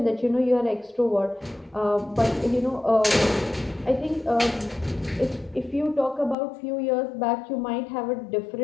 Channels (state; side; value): drops out; right; at 6.4 s